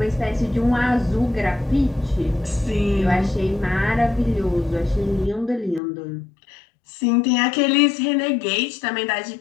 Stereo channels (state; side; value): drops out; right; at 5.8 s